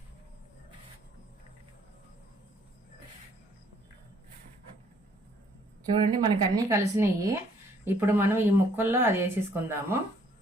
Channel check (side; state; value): both; normal; correlation 0.63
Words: చూడండి మనకి అన్నీ కలిసినాయి. ఇప్పుడు మనం ఈ ముక్కల్లో అది వేసేసుకుందాము.